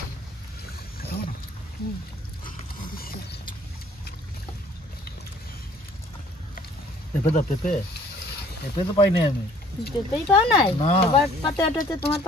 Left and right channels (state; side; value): normal; both; correlation 0.57